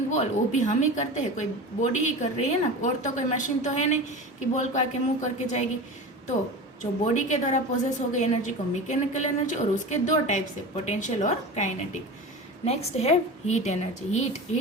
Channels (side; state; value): both; normal; correlation 0.30